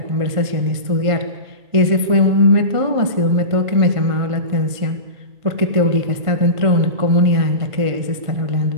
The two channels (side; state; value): left; late; 1.5 ms